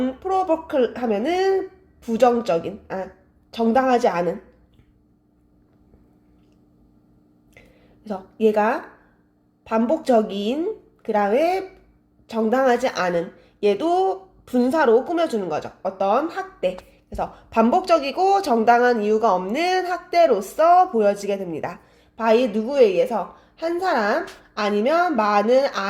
하면은 정당하지 않은. 그래서 얘가 반복적인, 그 다음에 정당하지 않은, 얘도 분사로 꾸며주는 거죠. 어떤 학대. 그래서 반복적이고 정당한 이유가 없는 학대로서 보여지게 됩니다. by 누구에 의해서? 한 사람 아니면 많은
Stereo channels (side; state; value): both; identical; correlation 1.00